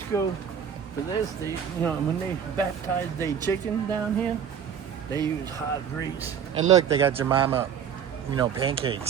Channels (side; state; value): left; quieter; 8.1 dB